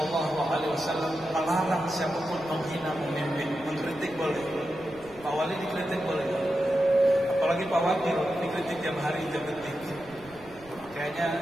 melarang siapapun menghina pemimpin. Mengkritik boleh, Pak Wali dikritik boleh, apalagi Pak Wakil dikritik tiap hari, tiap detik.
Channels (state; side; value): noise; right; rumble, 23 dB below the sound